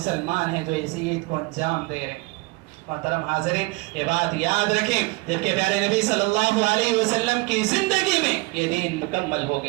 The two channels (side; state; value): left; quieter; 24.5 dB